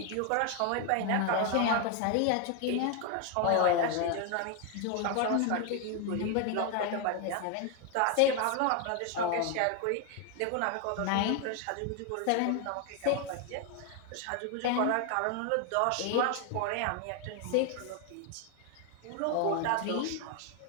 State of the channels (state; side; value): different; both; correlation 0.01